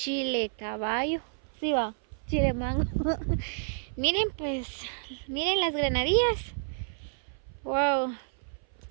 caballo, sí va, chile mango. Miren pues, miren las granadillas. Wow.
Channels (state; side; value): silent; left; 56 dB below the other